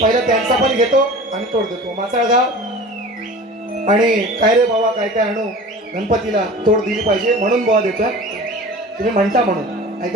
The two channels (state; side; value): normal; both; correlation 0.39